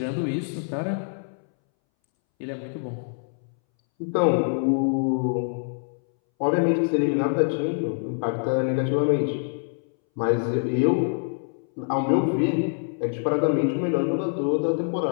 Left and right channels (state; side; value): silent; right; 62 dB below the other